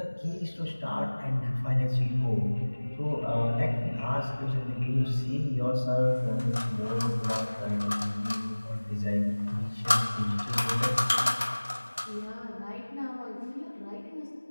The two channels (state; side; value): inverted; both; correlation -1.00